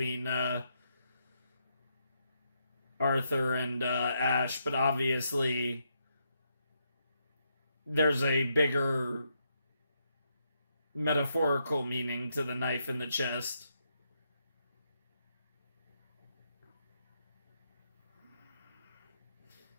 Arthur and Ash, but obviously there's a bigger metaphorical meaning to the knife in the chest.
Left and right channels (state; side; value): inverted; both; correlation -0.79